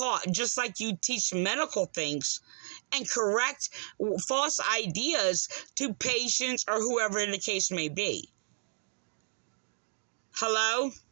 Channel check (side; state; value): left; silent; digital silence